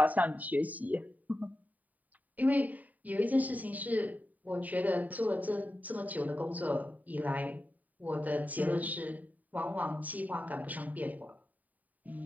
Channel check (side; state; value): left; late; 0.076 ms